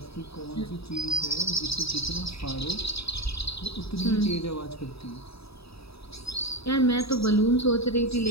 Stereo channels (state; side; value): late; right; 0.77 ms